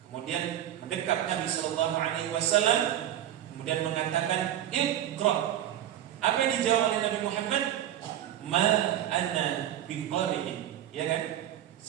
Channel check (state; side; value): quieter; left; 11.7 dB